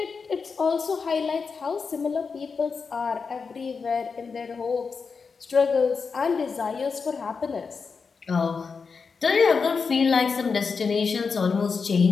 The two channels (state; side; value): quieter; right; 5.2 dB